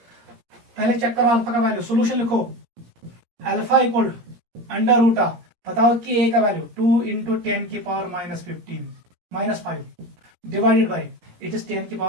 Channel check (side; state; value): left; late; 17 ms